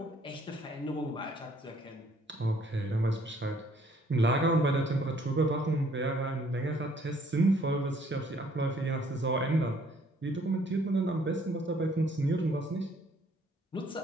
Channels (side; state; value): both; normal; correlation 0.62